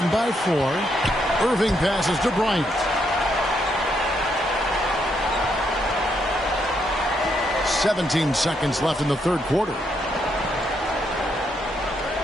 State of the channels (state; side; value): normal; both; correlation 0.76